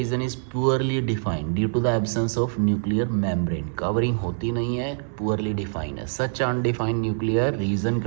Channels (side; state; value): left; silent; digital silence